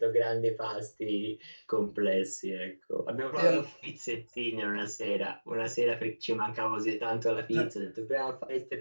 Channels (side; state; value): both; inverted; correlation -1.00